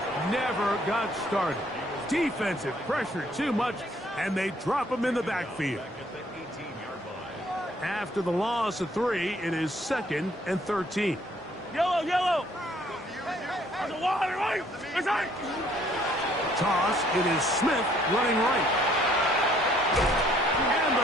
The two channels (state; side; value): normal; both; correlation 0.63